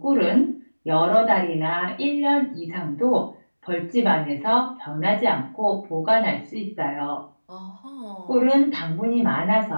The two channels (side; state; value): both; inverted; correlation -1.00